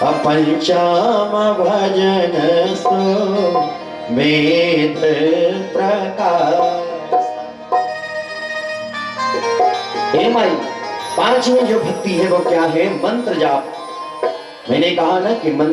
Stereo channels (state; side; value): identical; both; correlation 1.00